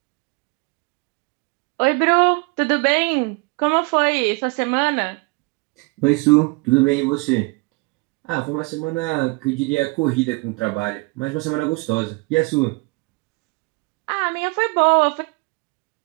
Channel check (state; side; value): quieter; left; 28.2 dB